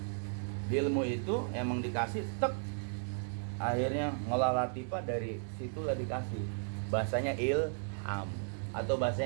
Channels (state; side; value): silent; left; 54 dB below the other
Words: Di ilmu itu emang dikasih tek. Akhirnya ngolah latifah dari situlah dikasih. Bahasanya ilham atau